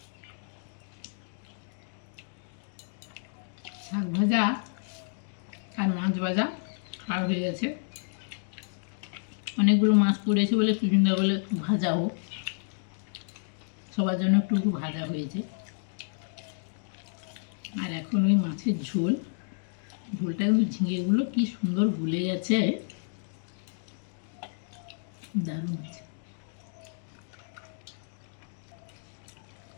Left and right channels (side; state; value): right; silent; digital silence